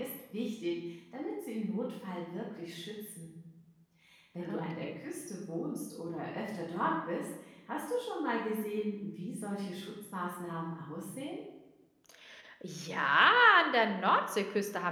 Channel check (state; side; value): identical; both; correlation 1.00